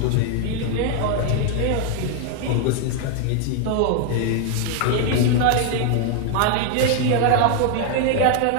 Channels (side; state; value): both; different; correlation 0.00